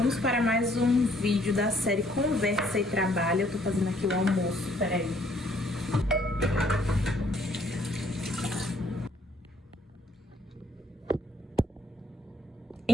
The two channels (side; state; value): both; normal; correlation 0.65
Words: para mais um vídeo da série Conversa e Trabalho. Eu tô fazendo aqui o almoço, peraí.